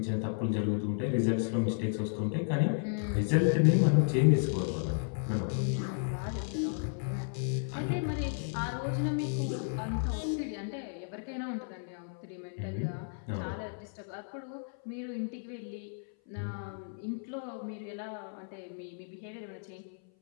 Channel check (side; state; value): right; silent; 56 dB below the other